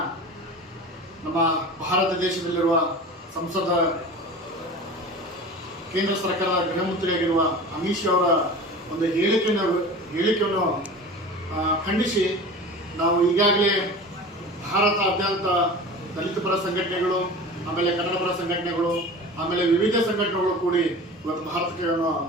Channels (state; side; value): normal; both; correlation 0.36